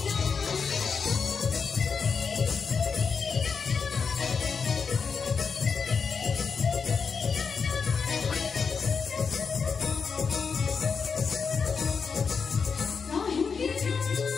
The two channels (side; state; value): right; quieter; 5.6 dB